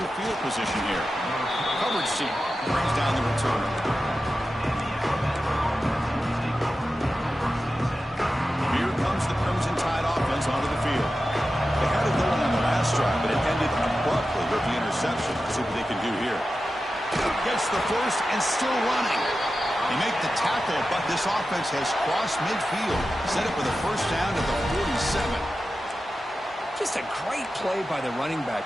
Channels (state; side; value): normal; both; correlation 0.92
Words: field position here. Coverage seat brings down the return. Here comes the Crimson Tide offense onto the field. They had it going on the last drive, but it ended abruptly with the interception. Let's see what they can do here. Gets the first and still running. They make the tackle, but this offense has crossed midfield. Set up with a first down at the 47. Just a great play by the running